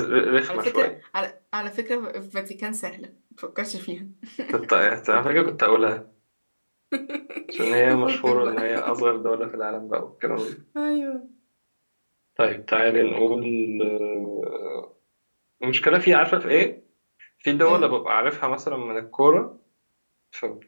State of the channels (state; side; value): inverted; both; correlation -1.00